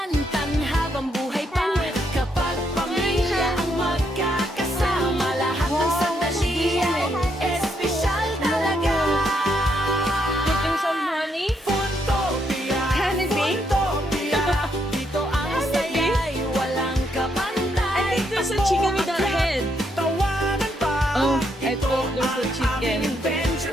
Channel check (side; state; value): both; normal; correlation 0.76